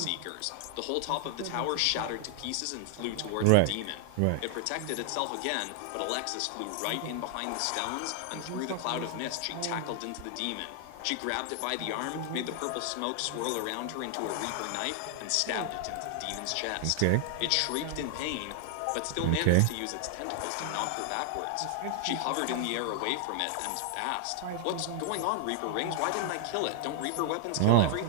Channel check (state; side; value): different; both; correlation 0.00